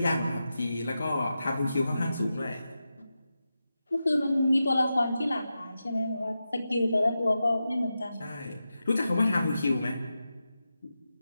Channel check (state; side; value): inverted; both; correlation -0.90